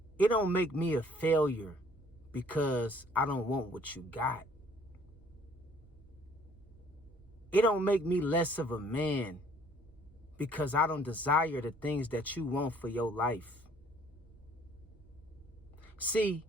It don't make me a failure because I don't want what you got. It don't make me less of a man because I don't desire the things that you want for your life. See,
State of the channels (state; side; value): normal; both; correlation 0.59